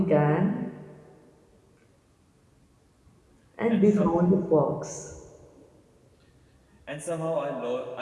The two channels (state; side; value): identical; both; correlation 1.00